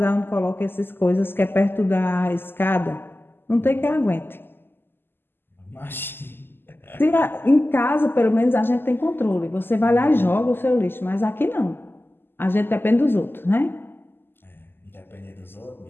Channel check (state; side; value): late; right; 0.10 ms